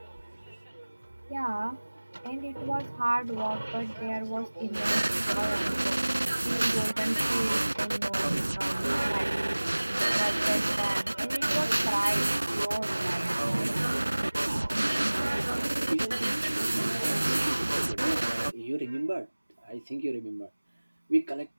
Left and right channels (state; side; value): inverted; both; correlation -1.00